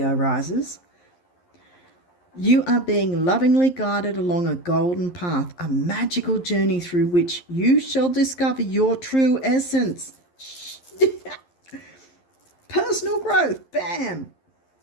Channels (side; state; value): right; late; 11 ms